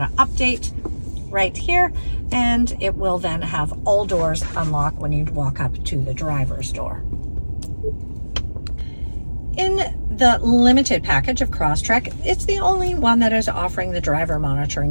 to update right here, and it will then have all doors unlock when you walk up to the driver's door. In the limited package of Crosstrek, it's the only one that is offering the driver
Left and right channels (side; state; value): both; inverted; correlation -1.00